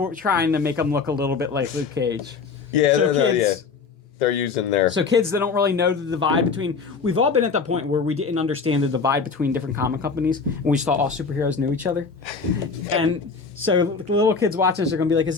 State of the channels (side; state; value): right; quieter; 5.0 dB